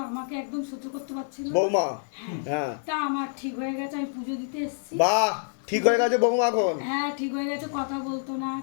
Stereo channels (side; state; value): right; silent; digital silence